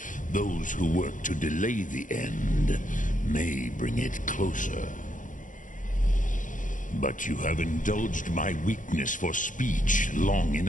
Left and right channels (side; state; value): right; late; 0.38 ms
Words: Those who work to delay the end may bring it closer. But you have indulged my weakness for speech long